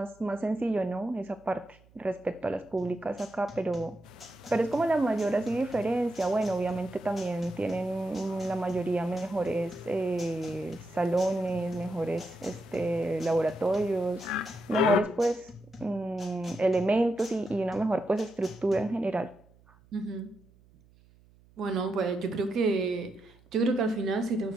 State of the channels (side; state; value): right; noise; hum, 28 dB below the sound